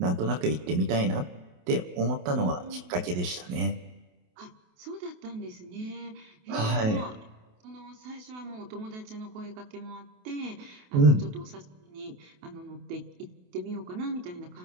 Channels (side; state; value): left; late; 28 ms